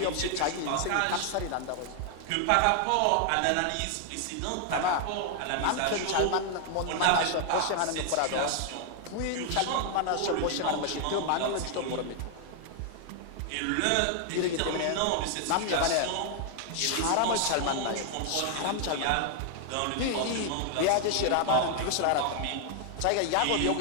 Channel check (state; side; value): different; both; correlation 0.00